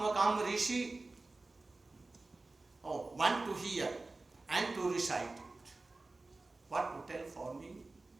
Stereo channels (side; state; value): left; quieter; 3.3 dB